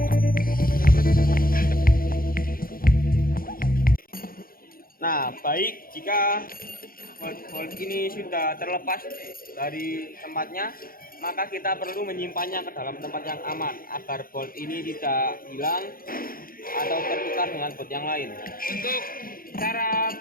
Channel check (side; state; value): right; late; 0.42 ms